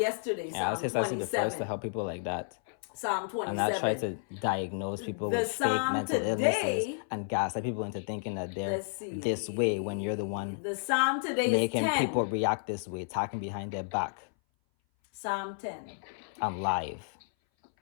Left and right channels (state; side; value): silent; right; 57 dB below the other